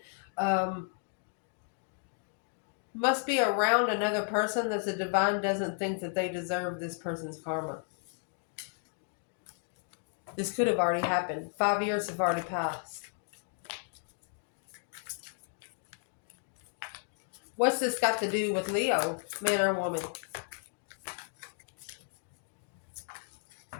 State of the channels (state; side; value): silent; right; 55 dB below the other